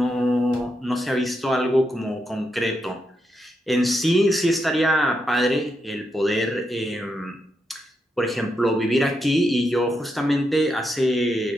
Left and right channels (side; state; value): both; normal; correlation 0.83